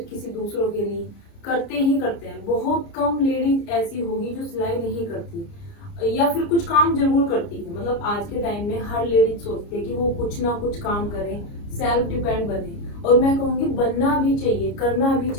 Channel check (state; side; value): late; right; 29 ms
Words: किसी दूसरों के लिए करते ही करते हैं। बहुत कम लेडीज ऐसी होगी जो सिलाई नहीं करती या फिर कुछ काम जरूर करती है। मतलब आज के टाइम में हर लेडीज सोचती है कि वो कुछ ना कुछ काम करे, सेल्फ डिपेंड बने। और मैं कहूंगी बनना भी चाहिए, करना भी